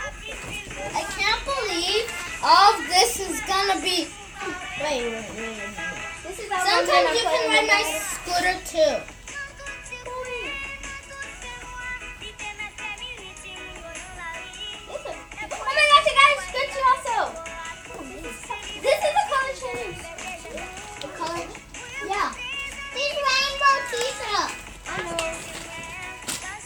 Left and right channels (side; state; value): both; identical; correlation 1.00